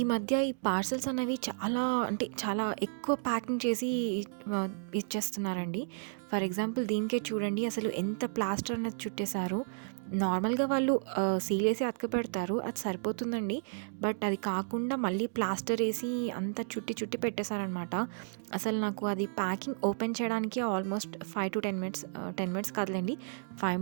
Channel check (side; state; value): left; silent; digital silence